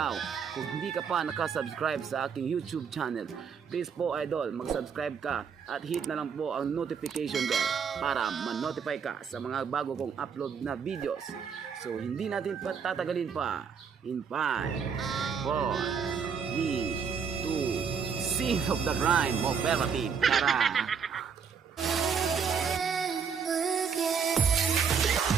hindi ka pa nakasubscribe sa aking YouTube channel, please po idol, mag-subscribe ka at hit na lang po ang notification bell para ma-notify ka sa mga bago kong upload na videos. So hindi natin patatagalin pa. In 5, 4, 3, 2, Scene of the Crime Operative. Tara!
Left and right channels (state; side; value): quieter; left; 6.5 dB